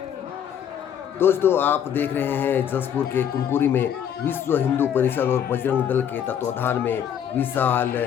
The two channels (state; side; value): quieter; right; 9.0 dB